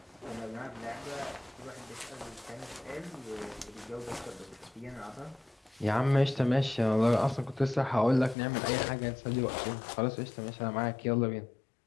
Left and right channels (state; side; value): drops out; right; at 8.3 s